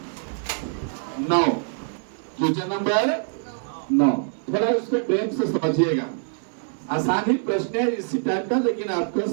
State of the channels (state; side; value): silent; left; digital silence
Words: 9, क्वेश्चन नंबर 9, थोड़ा इसको प्रेम से समझिएगा, आसानी प्रश्न है इसी टाइप का, लेकिन आपका